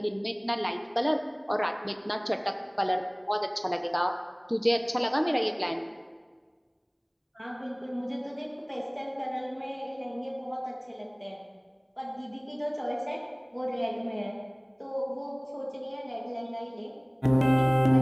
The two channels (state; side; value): identical; both; correlation 1.00